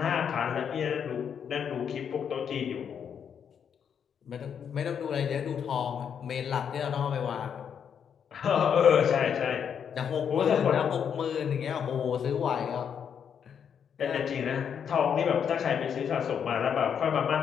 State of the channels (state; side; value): quieter; right; 7.7 dB